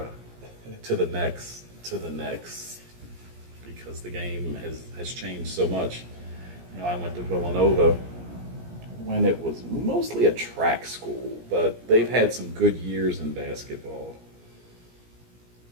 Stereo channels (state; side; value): late; left; 17 ms